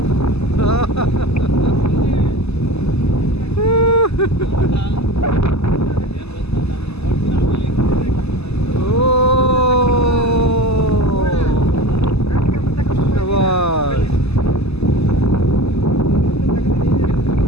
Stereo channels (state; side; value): late; right; 0.79 ms